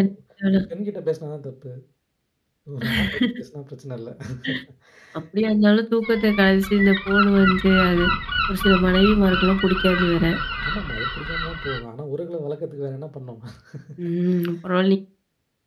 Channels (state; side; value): identical; both; correlation 1.00